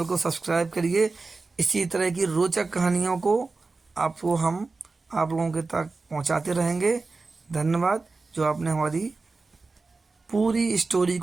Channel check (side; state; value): left; quieter; 3.8 dB